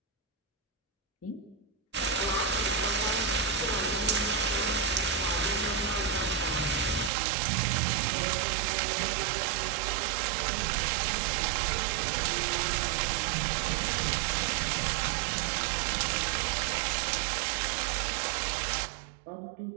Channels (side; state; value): left; drops out; at 7.1 s